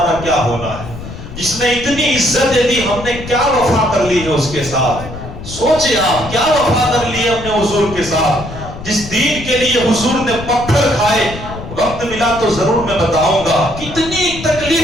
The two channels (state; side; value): noise; left; rumble, 11 dB below the sound